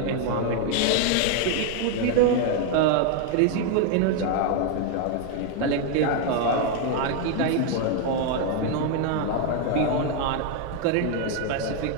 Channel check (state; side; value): different; both; correlation 0.00